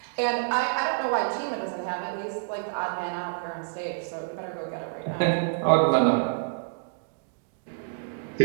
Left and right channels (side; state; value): left; silent; digital silence